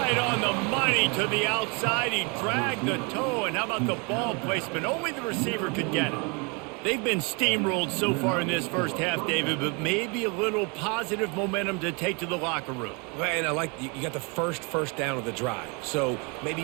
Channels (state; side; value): quieter; left; 31.6 dB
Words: on the money to the outside. He dragged the toe, and how about the ball placement? Only the receiver could get it. They've been steamrolled so far in this first half, David, but maybe a little positive momentum to take to the locker room. And I like you got the first down of the drive, so maybe